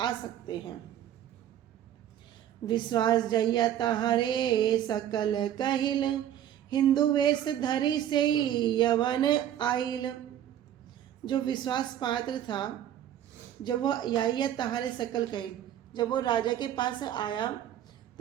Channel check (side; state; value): left; quieter; 11.0 dB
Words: सकते हैं। विश्वास जइया तहारे सकल कहिल हिंदू वेश धरी से यवन आइल। जो विश्वास पात्र था, जब वो या तहारे सकल कहिल, जब वो राजा के पास आया